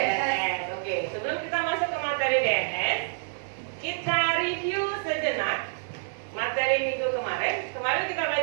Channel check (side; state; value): left; silent; digital silence